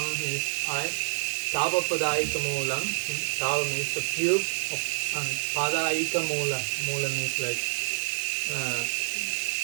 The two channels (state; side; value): silent; left; digital silence